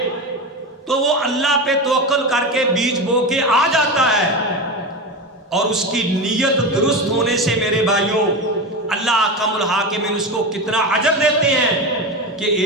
تو وہ اللہ پہ توکل کر کے بیج بو کے آ جاتا ہے، اور اس کی نیت درست ہونے سے میرے بھائیوں اللہ احکم الحاکمین اس کو کتنا اجر دیتے ہیں کہ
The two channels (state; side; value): normal; both; correlation 0.21